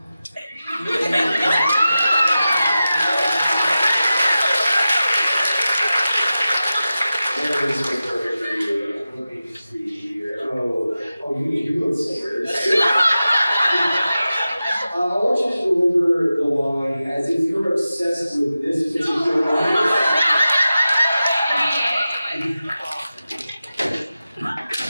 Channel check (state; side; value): inverted; both; correlation -0.94